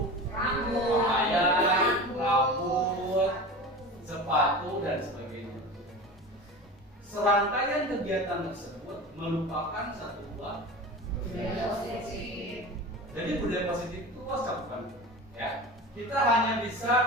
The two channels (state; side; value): normal; both; correlation 0.32